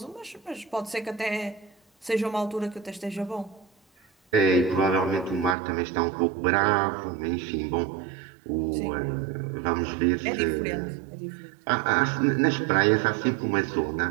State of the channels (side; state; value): left; drops out; at 5.6 s